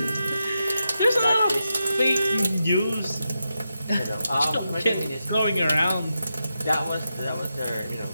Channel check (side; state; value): both; inverted; correlation -0.87